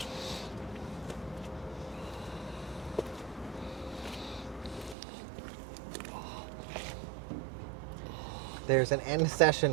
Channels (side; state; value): left; drops out; at 5.0 s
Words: There's an end